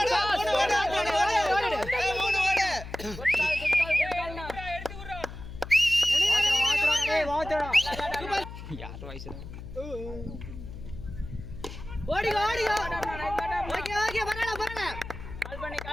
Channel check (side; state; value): left; noise; hum, 11 dB below the sound